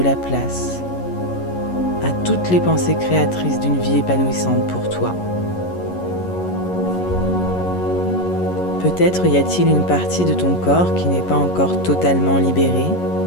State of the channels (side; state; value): right; late; 11 ms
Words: la place à toutes les pensées créatrices d'une vie épanouissante pour toi. Peut-être y a-t-il une partie de ton corps qui n'est pas encore totalement libérée.